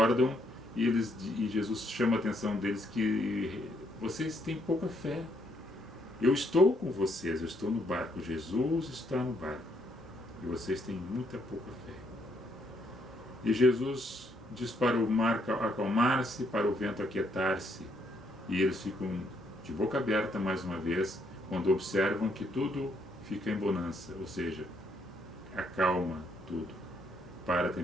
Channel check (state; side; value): normal; both; correlation 0.72